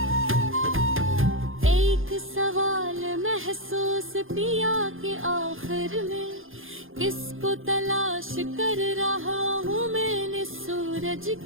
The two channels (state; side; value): late; left; 0.59 ms